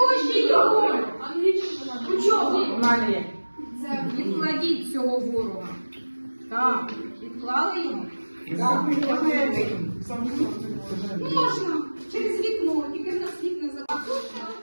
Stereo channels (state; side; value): inverted; both; correlation -1.00